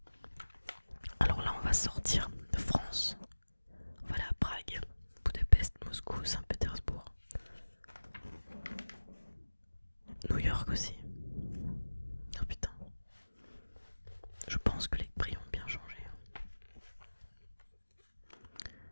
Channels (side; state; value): both; inverted; correlation -1.00